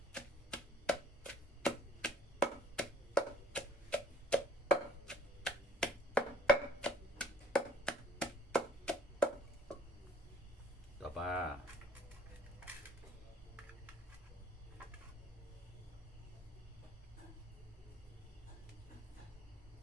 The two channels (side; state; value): both; normal; correlation 0.59